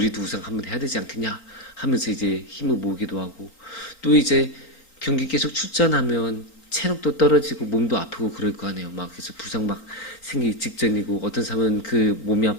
우승 한번 해야 되지 않겠냐 하면서 이제 힘을 모으기도 하고, 또 이제 경기 계속 출전하면 체력도 떨어지고 몸도 아프고 그럴 거 아니에요. 막 그래서 부상 막 생기기 직전이고, 어떤 사람은 그 몸이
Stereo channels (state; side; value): late; right; 4.4 ms